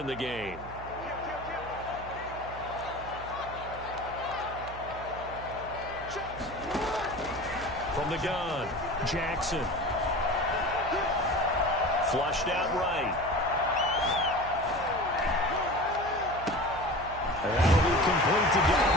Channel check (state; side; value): noise; right; hum, 13 dB below the sound